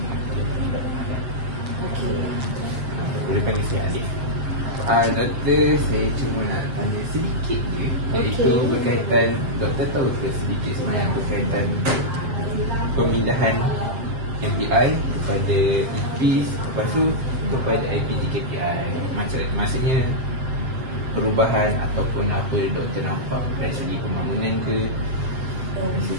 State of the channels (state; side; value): late; left; 7.6 ms